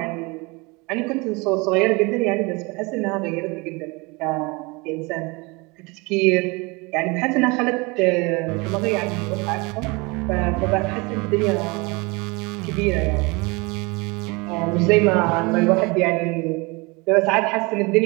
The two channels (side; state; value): left; quieter; 26.7 dB